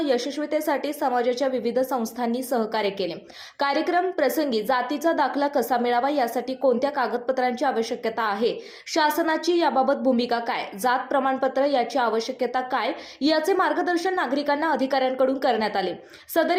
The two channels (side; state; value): both; identical; correlation 1.00